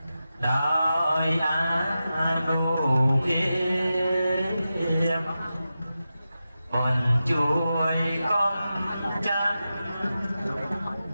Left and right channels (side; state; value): both; inverted; correlation -0.92